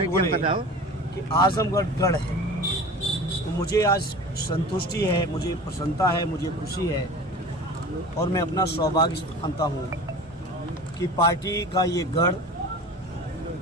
बोले कि आजमगढ़ गढ़ है। तो मुझे आज संतुष्टि है, मुझे प्रसन्नता है, मुझे खुशी है और मैं अपना सौभाग्य मानता हूँ कि पार्टी का ये गढ़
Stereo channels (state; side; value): normal; both; correlation 0.37